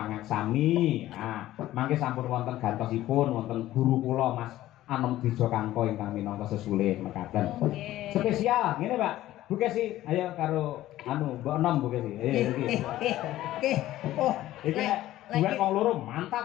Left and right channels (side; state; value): right; quieter; 14.8 dB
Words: Nah, mangke sampun wonten gantosipun wonten guru kula Mas Anom Dijo Kangko ingkang minangka sesulih mekaten. Spesial ngene Pak. Bu Kesi, ayo karo anu Mbok Enom Bu Kesi. Ayo iki. Oh, iki duet wong loro